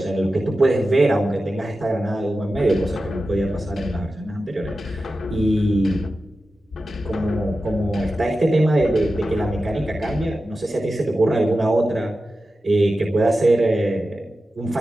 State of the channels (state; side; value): normal; both; correlation 0.93